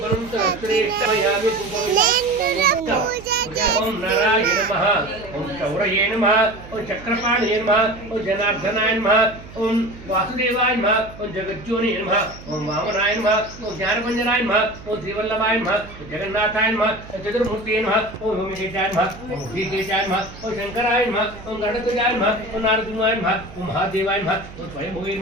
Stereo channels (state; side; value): noise; right; hum, 17 dB below the sound